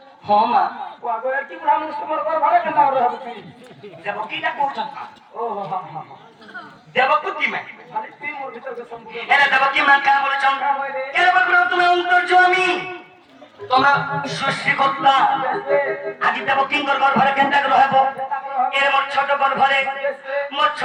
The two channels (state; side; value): identical; both; correlation 1.00